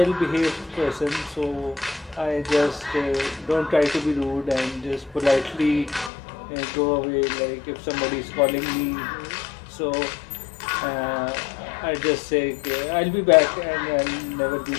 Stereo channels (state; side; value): drops out; right; at 6.1 s